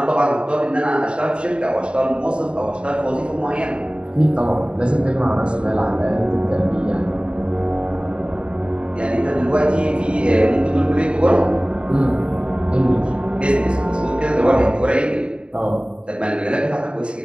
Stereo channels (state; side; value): late; left; 0.054 ms